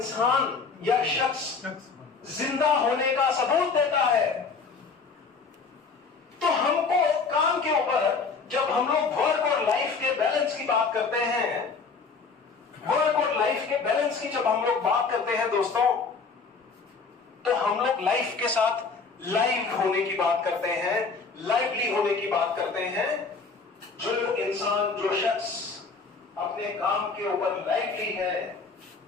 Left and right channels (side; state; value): right; quieter; 4.8 dB